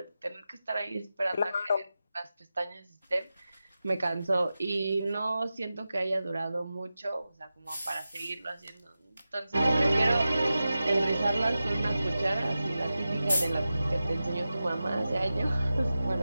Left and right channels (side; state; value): both; inverted; correlation -0.93